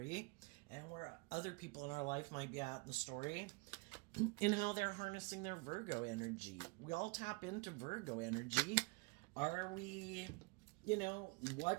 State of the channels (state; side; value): quieter; left; 28.4 dB